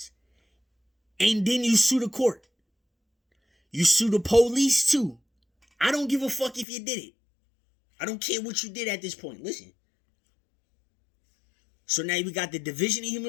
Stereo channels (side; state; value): right; drops out; at 6.7 s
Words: and then you sue the court. You sue the police too. I don't give a fuck if you did it. I don't care what you did at this point. Listen. So now we got the Division of